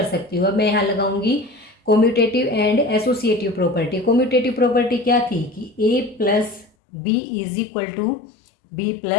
सकती हूँ, अब मैं यहाँ लगाऊंगी commutative and associative property. Commutative property क्या थी कि a plus B is equal to B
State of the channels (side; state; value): right; drops out; at 6.7 s